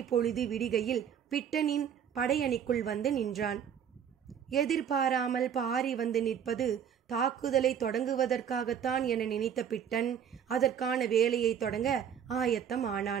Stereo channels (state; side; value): quieter; left; 8.3 dB